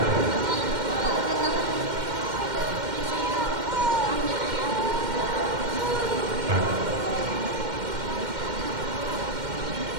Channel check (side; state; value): left; late; 2.1 ms